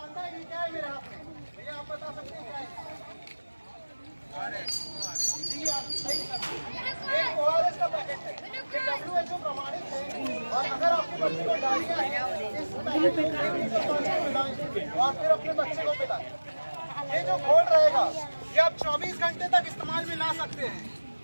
है कि क्या है मेरे हाथ में? भैया आप बता सकते हैं क्या है? जी आप सही एक ORS का पैकेट है, ये WHO प्रमाणित है। और अगर आपके बच्चे को डायरिया है, इस पैकेट को पिलाएं और फिर अपने बच्चे को पिलाएं। ये जो घोल रहेगा ये आप 24 घंटे तक इस्तेमाल में ला सकते हैं।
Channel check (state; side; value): inverted; both; correlation -1.00